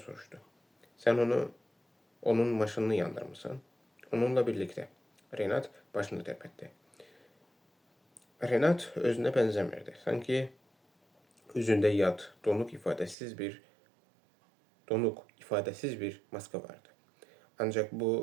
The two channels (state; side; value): drops out; left; at 13.2 s